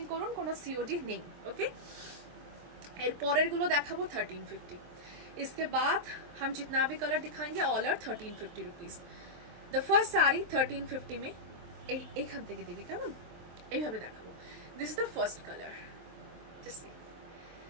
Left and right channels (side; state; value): left; late; 23 ms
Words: করুন, কোনো সিওডি নেই। ওকে, এর পরের গুলো দেখাবো 1350। इसके बाद हम जितना भी कलर दिखाएंगे all are 1350 rupees. The first sari 1350 में এইখান থেকে দিবি, কেমন এইভাবে দেখাবো। This is the first colour. Just see,